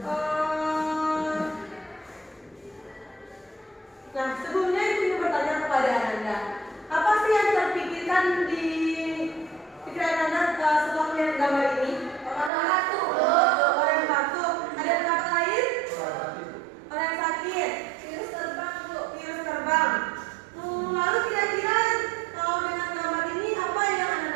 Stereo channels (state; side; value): drops out; left; at 12.5 s